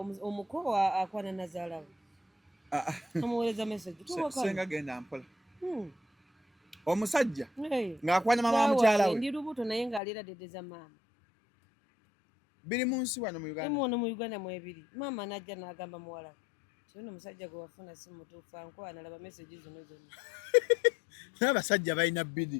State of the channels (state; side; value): drops out; right; at 10.0 s